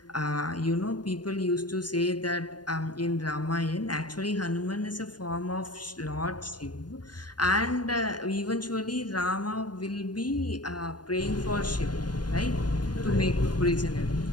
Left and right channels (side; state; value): right; late; 0.70 ms